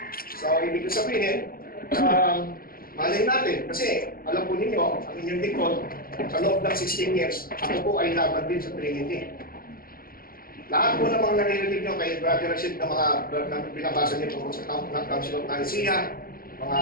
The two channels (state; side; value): late; right; 0.42 ms